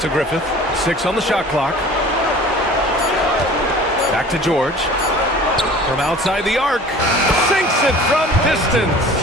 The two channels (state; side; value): normal; both; correlation 0.45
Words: to Griffith. 6 on the shot clock. Back to George. From outside the arc. Sinks it from distance.